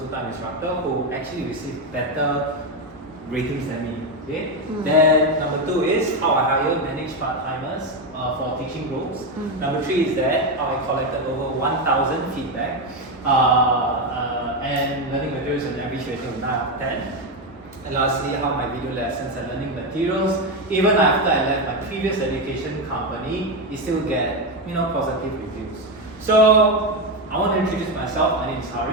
instructor who actually received better ratings than me. Okay. Then number 2 is how I hire manage part-timers for teaching roles. Number 3 is that how I collected over 1,000 feedback and learning materials an average rating of 9 out of 10. And lastly, how my video lessons and learning materials, even after I left my previous education company, it still get positive reviews. So I want to introduce myself. My name is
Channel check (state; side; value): normal; both; correlation 0.10